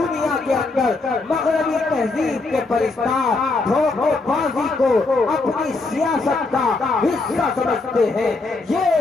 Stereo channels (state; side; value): quieter; right; 3.5 dB